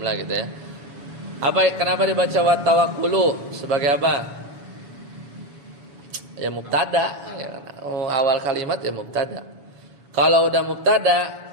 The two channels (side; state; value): left; late; 7.1 ms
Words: gitu ya. Kenapa dibaca wa tawakkulu sebagai apa? Ya mubtada, ya kan? Awal kalimat ya mubtada. Kalau udah mubtada,